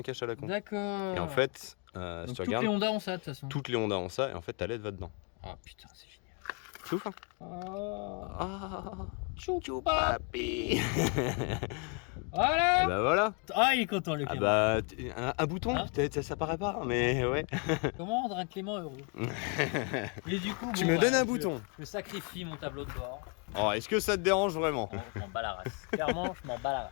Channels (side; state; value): right; quieter; 34.7 dB